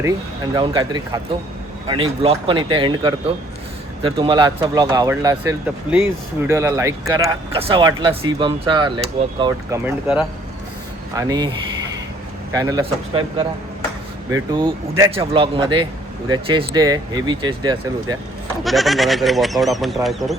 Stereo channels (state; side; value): normal; both; correlation 0.60